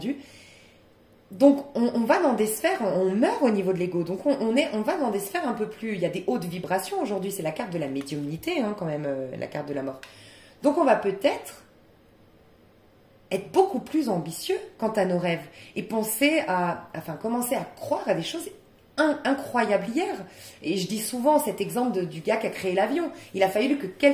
Donc on va dans des sphères, on meurt au niveau de l'ego, donc on va dans des sphères un peu plus... Il y a des hautes vibrations aujourd'hui, c'est la carte de la médiumnité, hein, quand même, la carte de la mort. Donc on va peut-être être beaucoup plus ambitieux quant à nos rêves et commencer à croire à des choses incroyables hier. Et je dis souvent cet exemple du gars qui a créé l'avion. Il a fallu que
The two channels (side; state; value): both; identical; correlation 1.00